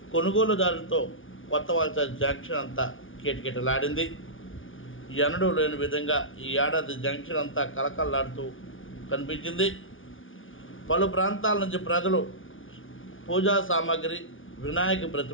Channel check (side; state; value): right; late; 0.57 ms